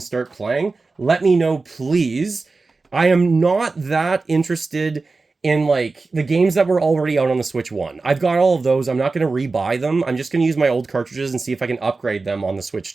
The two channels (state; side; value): quieter; left; 3.8 dB